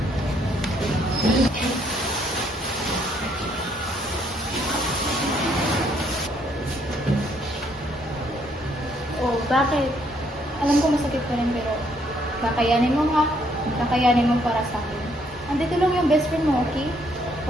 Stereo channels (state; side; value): normal; both; correlation 0.69